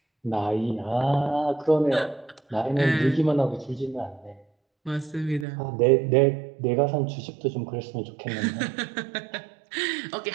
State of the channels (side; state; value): left; drops out; at 5.5 s